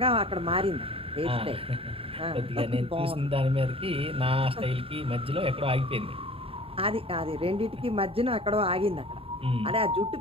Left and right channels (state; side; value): late; left; 0.27 ms